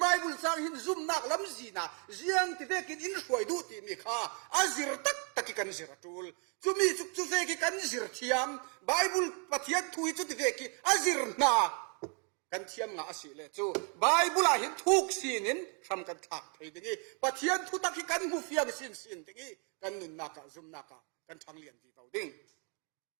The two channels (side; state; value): left; quieter; 37.6 dB